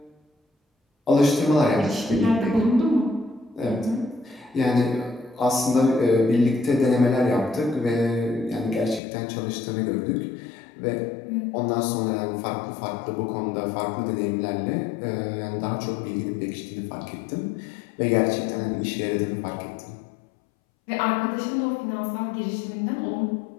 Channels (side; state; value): right; drops out; at 9.0 s